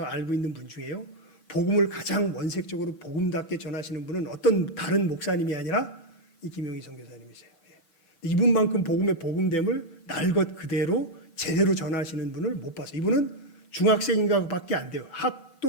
알고 있는 분 중에요. 복음을 가장 원색적으로 복음답게 전하시는 분은 어떤 다른 목사님이 아니라 이 김영희 선교사님이세요. 이분만큼 복음의 복음됨을 날 것 그대로 제대로 전하시는 분을 못 봤어요. 이분은 중학생인가밖에 안 돼요.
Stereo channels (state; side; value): late; right; 6.7 ms